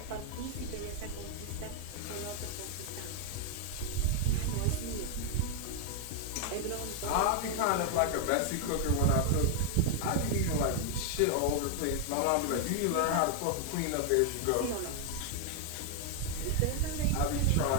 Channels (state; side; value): different; both; correlation 0.00